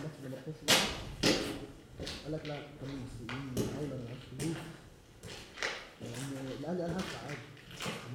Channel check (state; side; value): identical; both; correlation 1.00